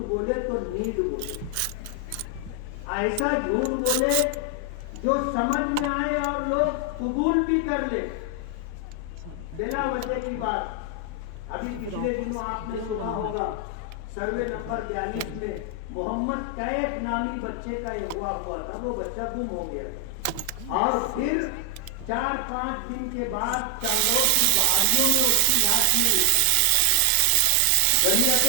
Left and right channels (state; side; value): different; both; correlation 0.00